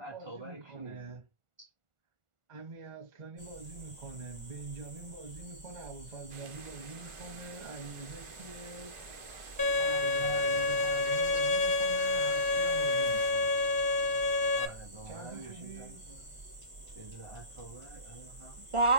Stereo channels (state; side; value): late; left; 1.4 ms